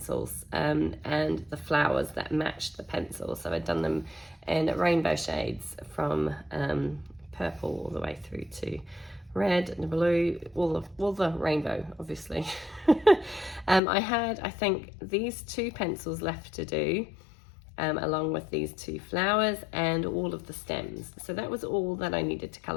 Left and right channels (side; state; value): right; drops out; at 13.8 s